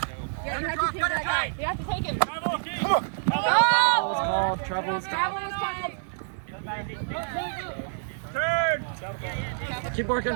Yeah, you have to take that guy. You have to take him. Come on. Travel was called. Travel was Travel was called. Turn. Keep working.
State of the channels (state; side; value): silent; left; 60 dB below the other